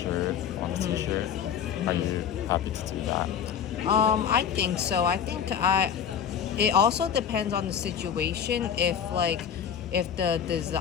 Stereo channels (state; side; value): quieter; right; 8.2 dB